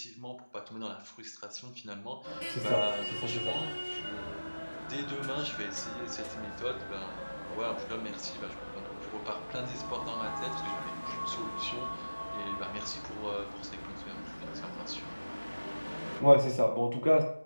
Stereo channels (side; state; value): both; inverted; correlation -1.00